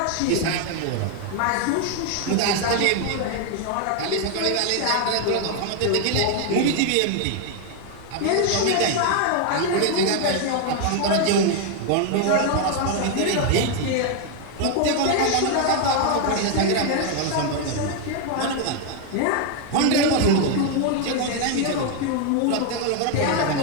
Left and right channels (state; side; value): different; both; correlation 0.00